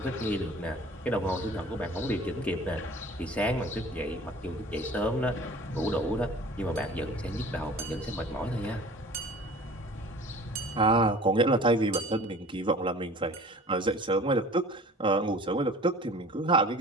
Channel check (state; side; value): normal; both; correlation 0.45